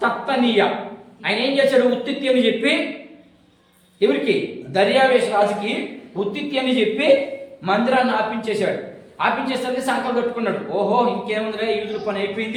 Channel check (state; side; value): identical; both; correlation 1.00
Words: తత్తనీయ. ఆయన ఏం చేశాడు? ఉత్తిత్తి అని చెప్పి ఎవరికి? దర్యావేష్ రాజుకి ఉత్తిత్తి అని చెప్పి మందిరాన్ని ఆపించేశాడు. ఆపించేసరికి సంకల్పం పెట్టుకున్నాడు, ఓహో ఇంకేముందిలే యూదుల పని